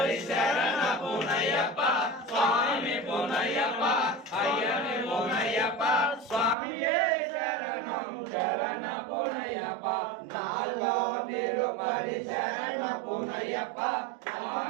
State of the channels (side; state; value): left; drops out; at 6.6 s